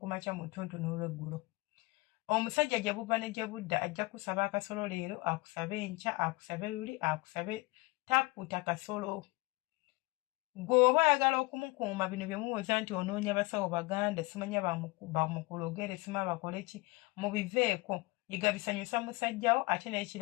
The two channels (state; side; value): quieter; right; 23.5 dB